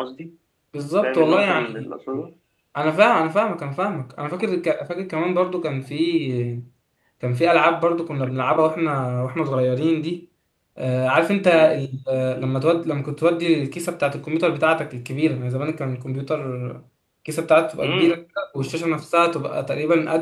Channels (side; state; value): both; identical; correlation 1.00